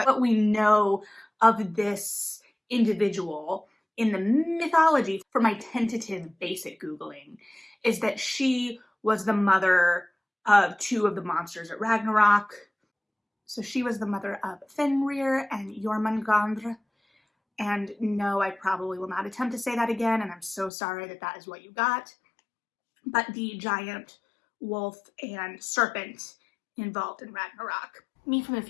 what we know of this individual in the mythology from my tentative basic Googling is that she was the mother of two of the monsters at Ragnarok. So she was the mother of Fenrir and Jormungandr. And no, I probably will not attempt to say that again, and I'm so sorry that that is what you got. But the giant wolf and serpent involved in Ragnarok. Me from the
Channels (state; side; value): drops out; right; at 20.7 s